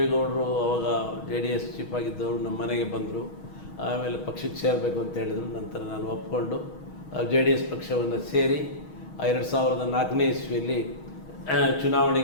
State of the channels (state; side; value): late; right; 6.3 ms